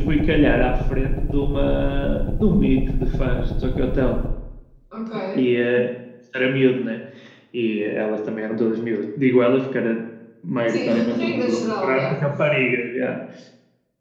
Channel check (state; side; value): identical; both; correlation 1.00